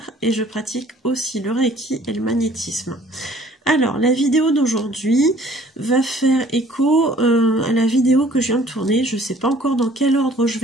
et je pratique aussi le Reiki et le magnétisme. Alors, la vidéo d'aujourd'hui va faire écho à la vidéo que je viens de tourner. Je ne sais pas encore dans quel ordre je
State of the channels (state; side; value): normal; both; correlation 0.55